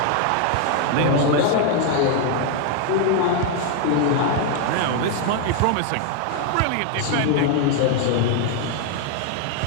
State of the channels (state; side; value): different; both; correlation 0.00